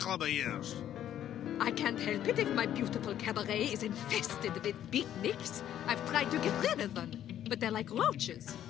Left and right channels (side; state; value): right; quieter; 11.0 dB